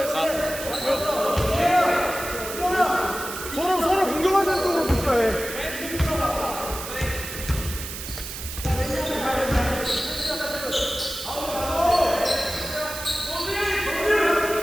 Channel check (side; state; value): right; noise; hiss, 9 dB below the sound